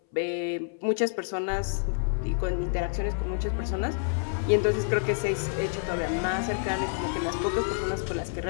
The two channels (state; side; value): silent; right; 59 dB below the other